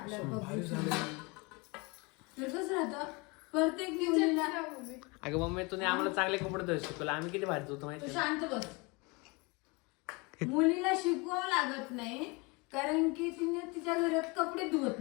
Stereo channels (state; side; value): quieter; right; 27.6 dB